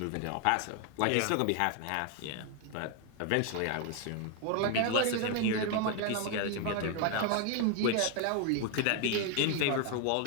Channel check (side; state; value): both; different; correlation 0.01